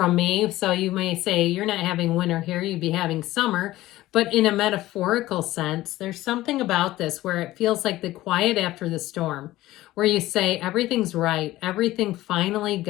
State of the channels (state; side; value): quieter; right; 16.4 dB